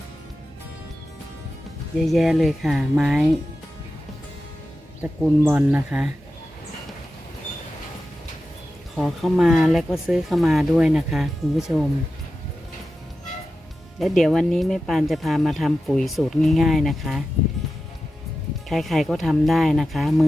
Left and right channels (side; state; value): both; normal; correlation 0.92